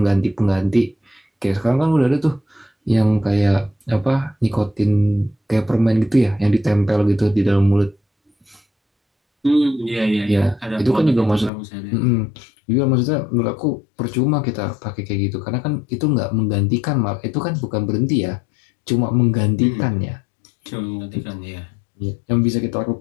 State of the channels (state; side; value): drops out; right; at 11.5 s